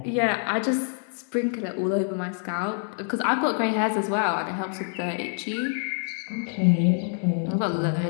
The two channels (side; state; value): right; silent; 61 dB below the other